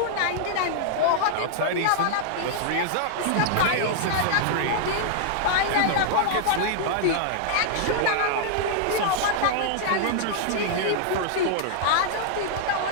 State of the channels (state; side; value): different; both; correlation -0.01